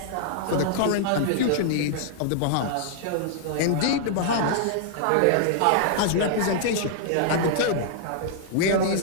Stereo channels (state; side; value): different; both; correlation -0.01